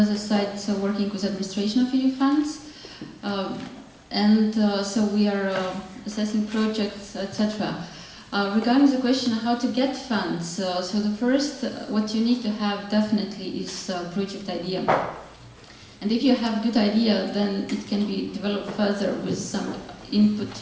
side, so working with administration of EU funds. and so we are assessing projects, etc. Regarding the question how to get funds, so the first, what you need to have definitely is a project idea. And if you have a good idea, then it can be developed further with some input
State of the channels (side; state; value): both; identical; correlation 1.00